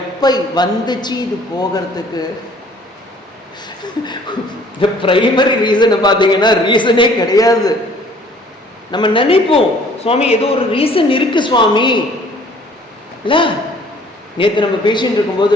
வந்துச்சு இது போகிறதுக்கு. இந்த பிரைமரி ரீசனை பார்த்தீங்கன்னா ரீசனே கிடையாது. நம்ம நினைப்போம் சுவாமி ஏதோ ஒரு ரீசன் இருக்கு சுவாமி இல்ல. நேற்று நம்ம பேசிட்டு இருக்கும்போது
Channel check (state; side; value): normal; both; correlation 0.55